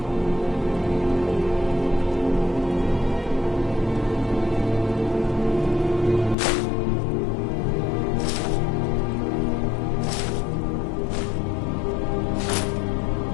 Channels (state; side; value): drops out; right; at 6.4 s